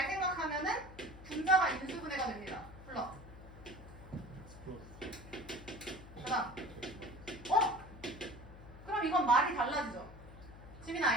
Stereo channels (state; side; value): noise; left; hum, 16 dB below the sound